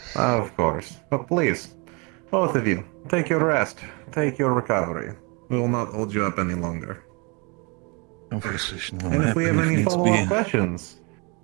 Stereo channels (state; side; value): quieter; left; 30.8 dB